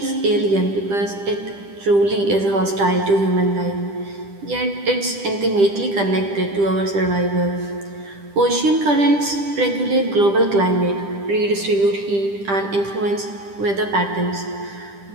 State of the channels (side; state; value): left; late; 10 ms